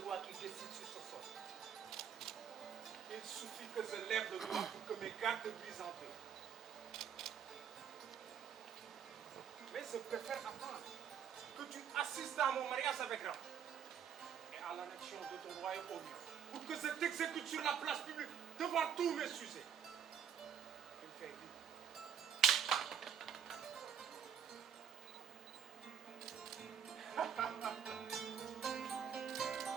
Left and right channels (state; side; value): quieter; left; 8.3 dB